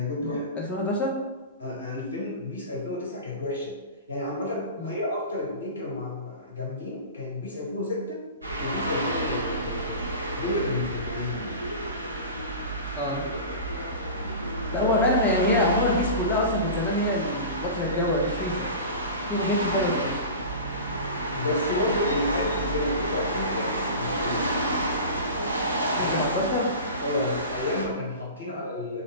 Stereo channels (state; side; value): inverted; both; correlation -0.33